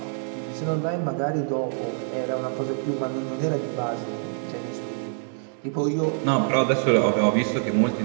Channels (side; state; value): left; silent; digital silence